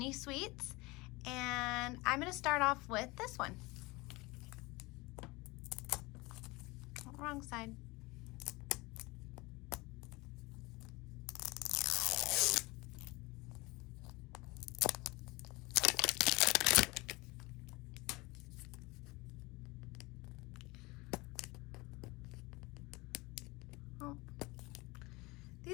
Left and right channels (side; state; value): right; quieter; 23.6 dB